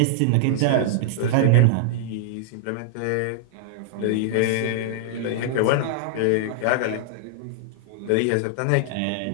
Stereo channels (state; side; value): different; both; correlation -0.01